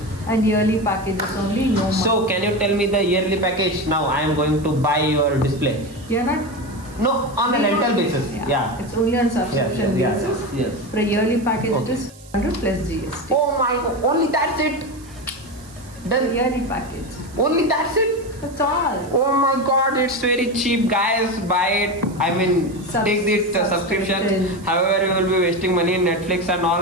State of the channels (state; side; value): noise; right; hiss, 23 dB below the sound